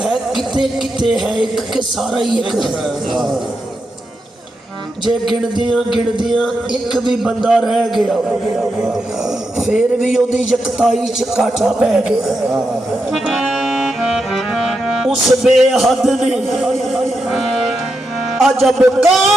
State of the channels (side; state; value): both; normal; correlation 0.86